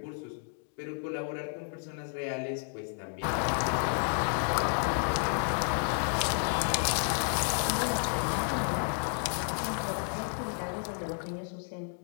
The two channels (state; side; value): silent; right; 57 dB below the other